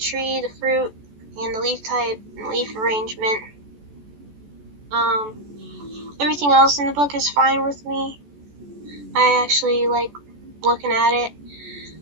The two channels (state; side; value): late; left; 14 ms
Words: the fruit, and the leaf type and leaf arrangement. Everything else in the book is fine with me. I actually like looking at it.